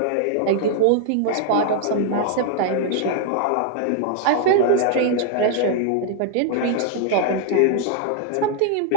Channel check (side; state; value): both; different; correlation 0.00